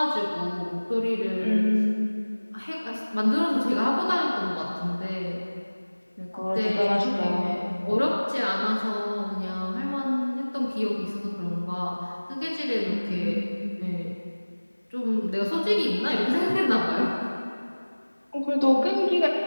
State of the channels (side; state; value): both; inverted; correlation -1.00